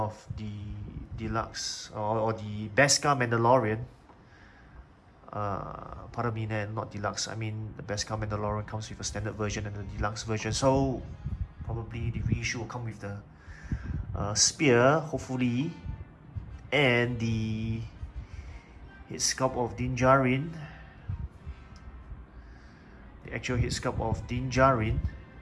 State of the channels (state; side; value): identical; both; correlation 1.00